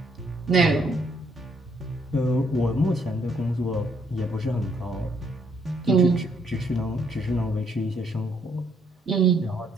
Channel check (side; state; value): both; normal; correlation 0.70